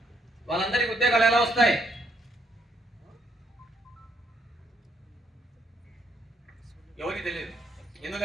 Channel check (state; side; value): normal; both; correlation 0.72